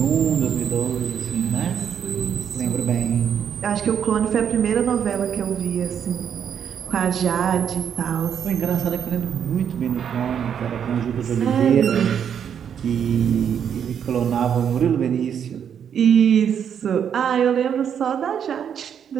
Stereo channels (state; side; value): quieter; left; 8.3 dB